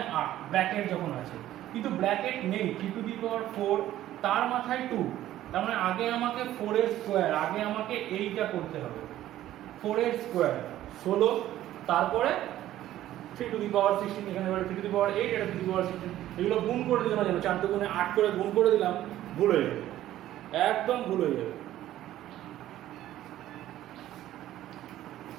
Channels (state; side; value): quieter; left; 13.5 dB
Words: 8 ব্র্যাকেট যখন আছে, কিন্তু ব্র্যাকেট নেই 3 টু দি পাওয়ার 4 তার মাথায় 2, তার মানে আগে আমাকে 4 এর স্কয়ার, আগে আমাকে এইটা করতে হবে, 4 এর স্কয়ার 16, তারপরে 3 টু দি পাওয়ার 16, এখানে 3 টু দি পাওয়ার 8, এটা 3 টু দি পাওয়ার 16, এগুলো গুণ করে দিলাম, 4 দুগুণে 8 করে গুণ করে দিলাম, ভুল হয়ে যাবে, একদম ভুল হয়ে যাবে।